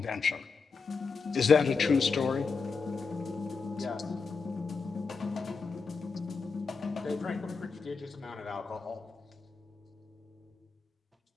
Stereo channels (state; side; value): quieter; right; 4.9 dB